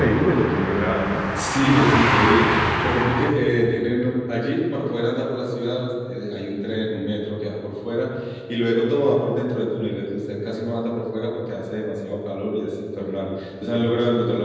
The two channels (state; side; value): identical; both; correlation 1.00